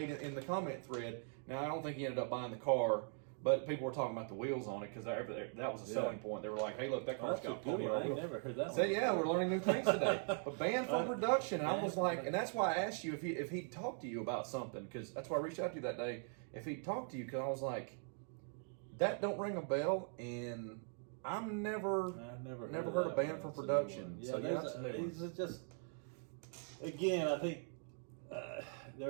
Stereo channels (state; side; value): silent; left; 50 dB below the other